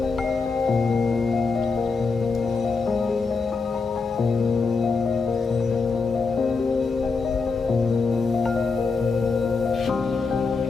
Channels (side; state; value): right; quieter; 4.5 dB